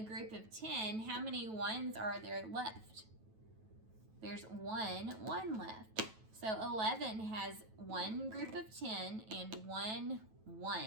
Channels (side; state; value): left; late; 9.2 ms